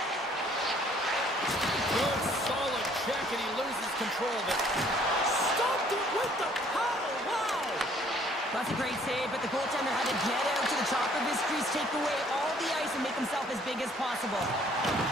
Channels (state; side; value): normal; both; correlation 0.60